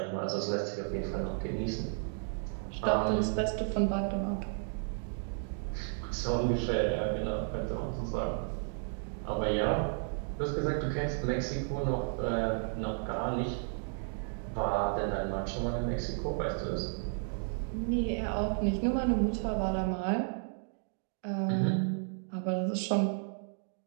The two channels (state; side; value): silent; left; 56 dB below the other